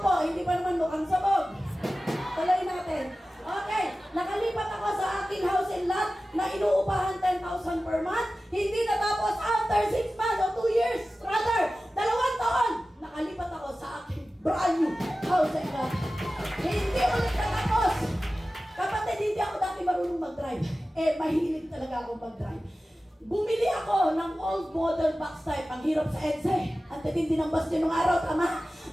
po, hindi pa naman mukhang sabog. Tuloy natin. Okay, nakalipat ako sa aking house and lot na inuupahan 10,000 per month. Hindi natapos after 6 months o 2 years. Rather, 2 taon, nakalipat ako sa aking brand new house and lot. Hindi ulit natapos. Kapatid, hindi ako dati marunong mag-drive. Mahilig talaga ako mag-drive. Bumili ako ng old model box type. Ang hirap sa EDSA. Ang titindi ng bus nung araw, tama?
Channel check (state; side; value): normal; both; correlation 0.95